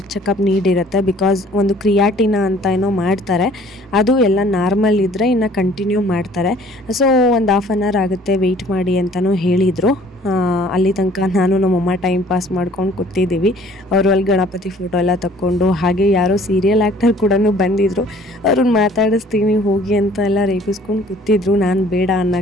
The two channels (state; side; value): normal; both; correlation 0.55